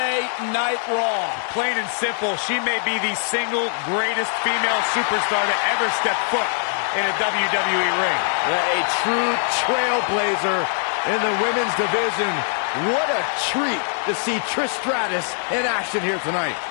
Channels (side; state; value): right; silent; 58 dB below the other